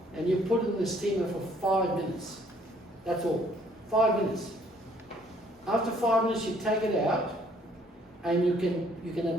and you put it in the steamer for 5 minutes. That's all. 5 minutes. After 5 minutes, you take it out, and you can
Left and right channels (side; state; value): both; normal; correlation 0.62